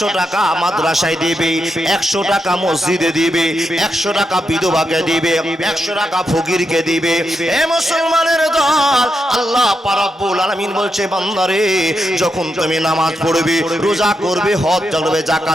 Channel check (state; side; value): normal; both; correlation 0.84